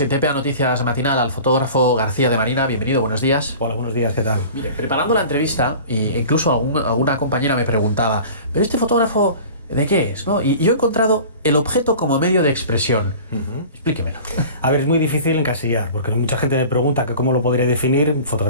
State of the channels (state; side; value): inverted; both; correlation -0.40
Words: en TPA Noticias Matinal al fotógrafo García de Marina. Bienvenido, buenos días. Hola, buenos días, ¿qué tal? Mire, preparando la entrevista, e incluso alguna compañera me preguntaba, ¿pero este fotógrafo de qué es? ¿No? Y yo he encontrado el objeto como medio de expresión. Explíquemelo. A ver, es muy difícil encasillar, porque mucha gente me pregunta que cómo lo podría definir,